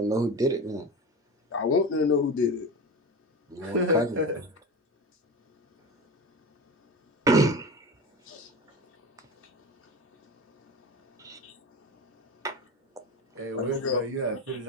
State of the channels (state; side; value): normal; both; correlation 0.28